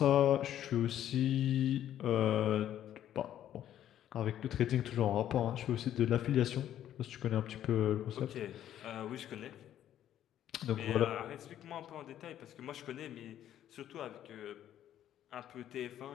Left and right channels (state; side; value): quieter; right; 11.3 dB